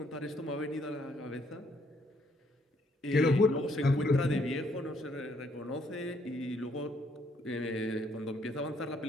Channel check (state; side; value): normal; both; correlation 0.69